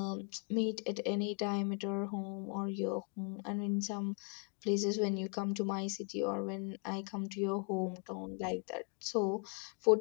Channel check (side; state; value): right; quieter; 37.8 dB